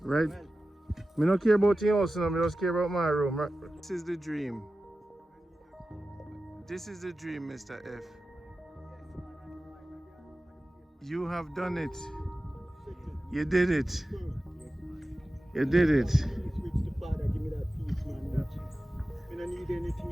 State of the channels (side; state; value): both; normal; correlation 0.94